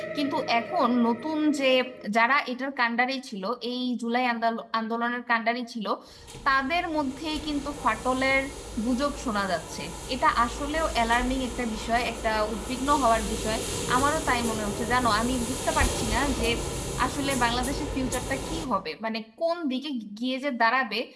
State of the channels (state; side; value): identical; both; correlation 1.00